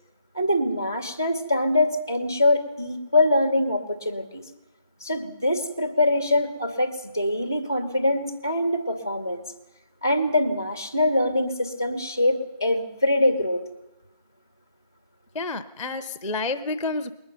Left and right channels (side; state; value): both; inverted; correlation -0.76